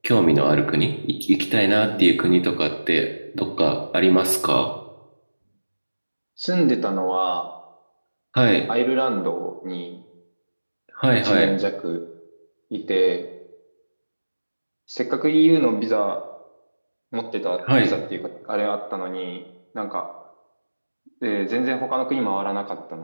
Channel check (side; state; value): both; inverted; correlation -1.00